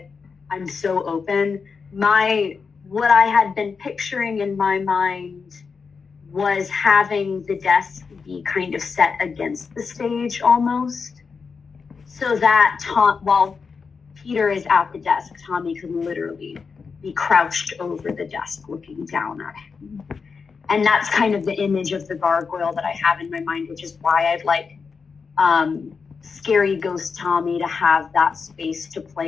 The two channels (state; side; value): quieter; right; 5.3 dB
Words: I'm so open. What I had been picturing in my mind was having the desk be kind of set against the stage almost, so that while Peter is at the desk, Tommy could literally be crouched over the desk looking down at him. And that's kind of the image of the gargoyle that I have in my mind, which is why I'd like Scary Ghost Tommy to have that space to